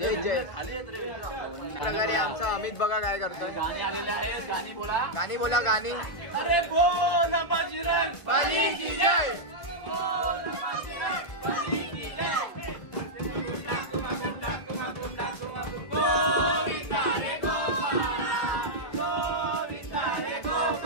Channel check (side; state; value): right; late; 1.5 ms